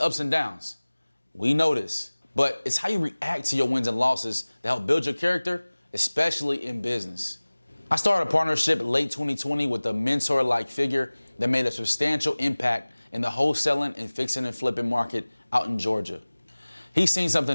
and downs. We know this, but it's how you react to your wins and losses that help build your character, especially in business. I started a partnership late 2020 with a mentor-like figure that made a substantial impact in the wholesaling and fixing and flipping market out in Georgia. He's seen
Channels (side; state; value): both; inverted; correlation -1.00